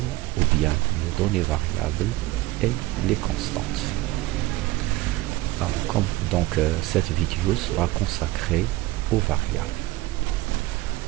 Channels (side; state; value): left; quieter; 19.6 dB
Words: ou bien les données variables, et les constantes. Alors, cette vidéo sera consacrée aux variables.